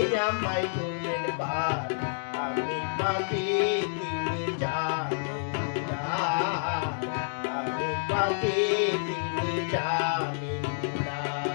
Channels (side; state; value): right; silent; digital silence